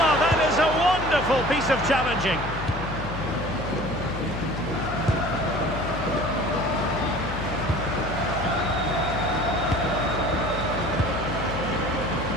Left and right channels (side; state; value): left; noise; hum, 8 dB below the sound